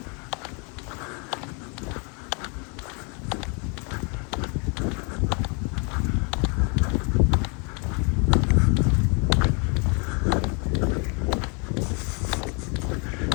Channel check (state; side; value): quieter; right; 34.8 dB